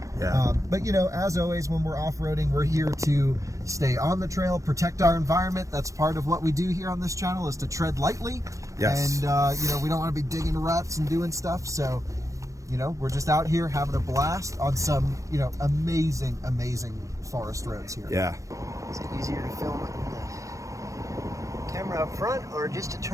Yeah. But you know, as always, when we're off-roading, we're here to stay on the trail, protect our environment. That's part of what we do here on this channel, is to tread lightly. Yes. And you know, we don't want to be digging ruts and doing stuff. So, you know, we're just out here having a blast on some, you know, amazing forest roads here. Yeah. Is it easier to film with the camera up front or just to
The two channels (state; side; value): late; left; 0.15 ms